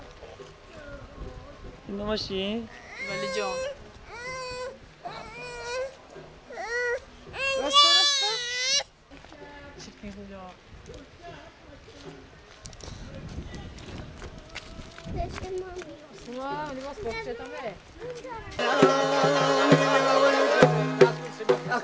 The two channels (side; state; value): both; identical; correlation 1.00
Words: این ماشین ولی جان